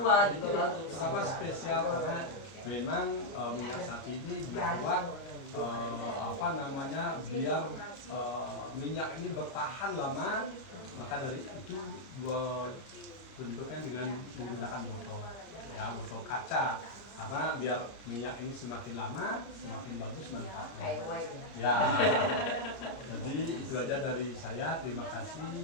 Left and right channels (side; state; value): right; late; 31 ms